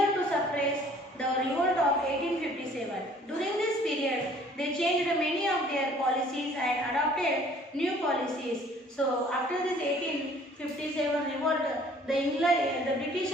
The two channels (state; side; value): normal; both; correlation 0.55